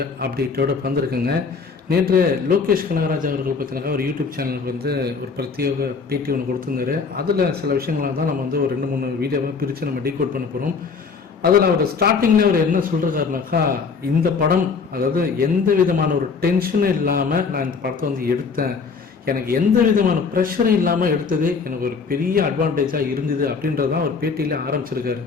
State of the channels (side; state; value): right; quieter; 5.2 dB